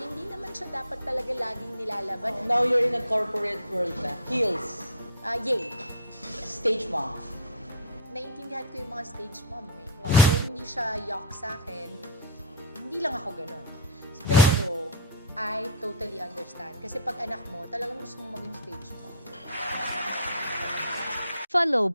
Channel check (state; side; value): inverted; both; correlation -0.31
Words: naman siya dapat talaga laging nilalaban. Now you're in a corporate world na. Heels. Yay! Stage mom. Naintindihan ko yung mga stage mom eh. Kung hindi siya yuck sa akin, hindi lang ako ganun. Pero, I totally understand. Kasi pag anak mo, talagang gusto mong maging stage mom. Follow